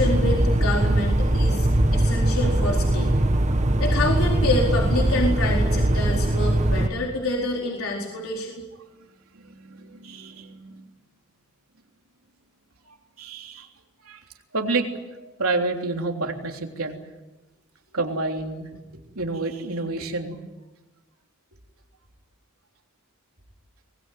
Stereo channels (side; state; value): both; normal; correlation 0.67